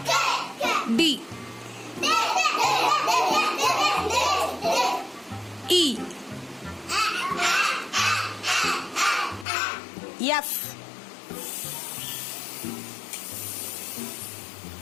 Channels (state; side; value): drops out; right; at 9.5 s